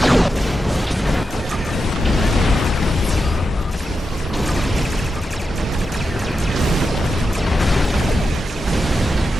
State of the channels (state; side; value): normal; both; correlation 0.88